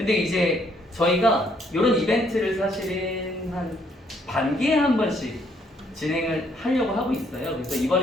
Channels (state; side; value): normal; both; correlation 0.69